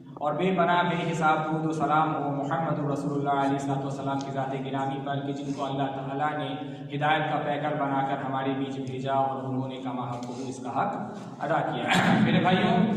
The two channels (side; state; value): both; identical; correlation 1.00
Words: और बेपना बेहिसाब दुरूद व सलाम हो मुहम्मद रसूलुल्लाह अलैहिस्सलाम की ज़ात गिरामी पर कि जिनको अल्लाह ताला ने हिदायत का पैकर बनाकर हमारे बीच भेजा और उन्होंने कमा हक़ इसका हक़ अदा किया। मेरे भाइयों,